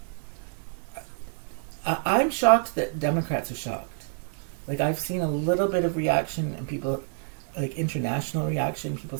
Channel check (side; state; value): left; silent; 60 dB below the other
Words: I'm shocked that Democrats are shocked. Like, I've seen a little bit of reaction and people, like international reaction, people